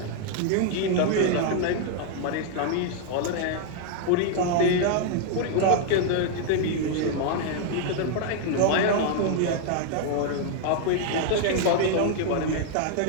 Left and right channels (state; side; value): different; both; correlation 0.00